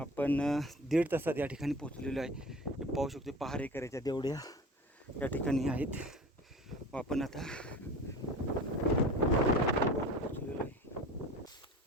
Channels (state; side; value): normal; both; correlation 0.38